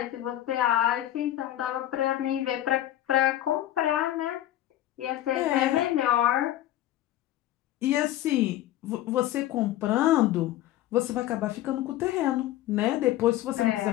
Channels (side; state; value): right; quieter; 13.6 dB